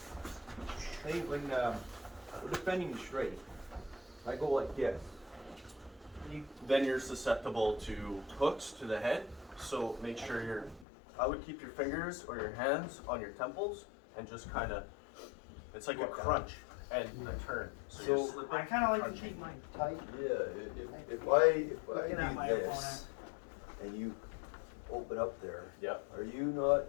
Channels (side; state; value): right; drops out; at 10.9 s